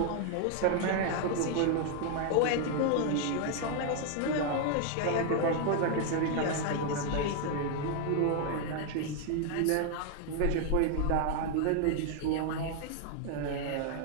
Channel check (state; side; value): different; both; correlation 0.00